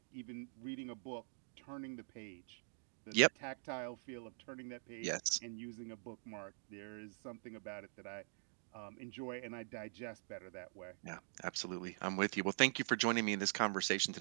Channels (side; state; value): left; silent; digital silence